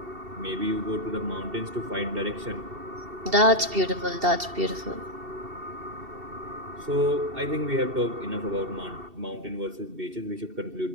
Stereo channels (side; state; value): left; late; 2.7 ms